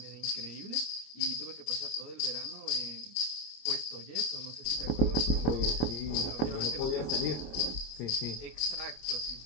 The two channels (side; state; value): right; late; 25 ms